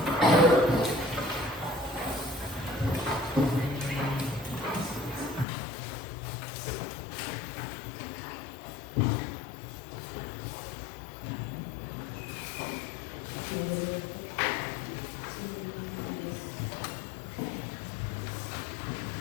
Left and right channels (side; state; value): right; drops out; at 5.5 s